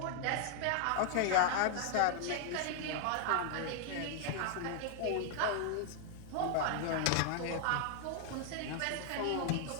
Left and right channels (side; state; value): both; different; correlation 0.00